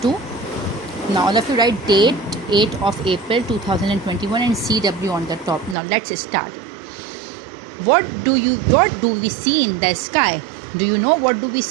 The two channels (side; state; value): left; drops out; at 5.8 s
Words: Now all of you write date 8 of April 2021 and CW on the top. Now let's start. What do we see in the sky? Do you know what do we